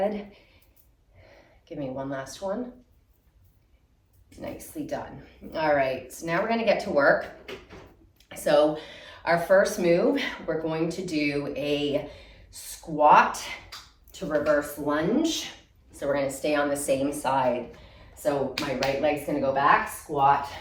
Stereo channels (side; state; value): both; identical; correlation 1.00